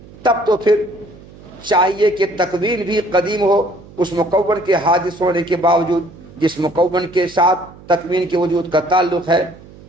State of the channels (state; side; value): noise; right; hum, 21 dB below the sound